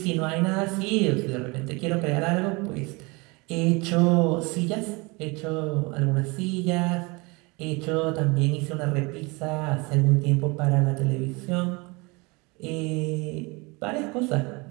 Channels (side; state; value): left; quieter; 26.8 dB